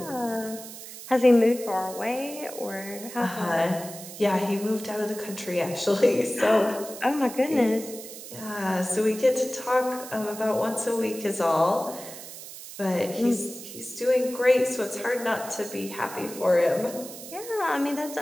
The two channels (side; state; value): right; noise; hiss, 13 dB below the sound